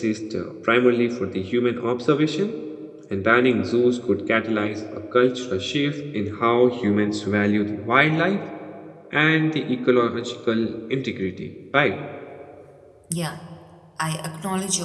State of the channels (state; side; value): identical; both; correlation 1.00